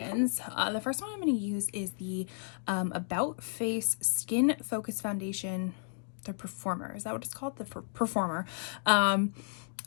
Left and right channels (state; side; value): silent; right; digital silence